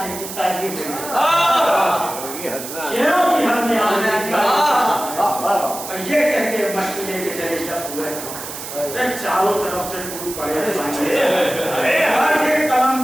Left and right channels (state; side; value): noise; right; hiss, 9 dB below the sound